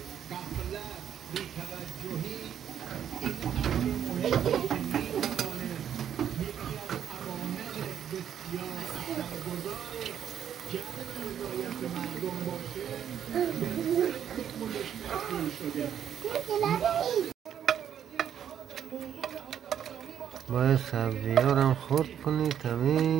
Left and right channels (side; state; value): left; quieter; 9.3 dB